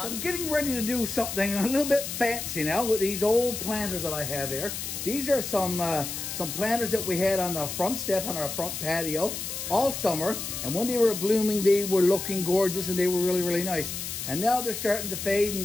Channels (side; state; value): left; noise; hiss, 6 dB below the sound